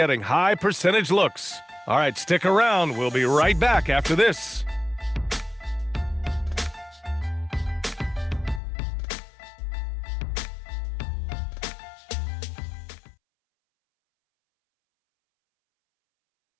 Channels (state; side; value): drops out; right; at 8.6 s